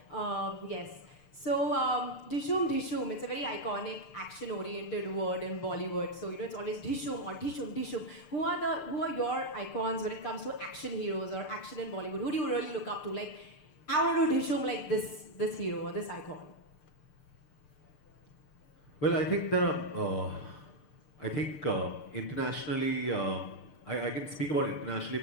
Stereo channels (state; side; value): late; right; 6.7 ms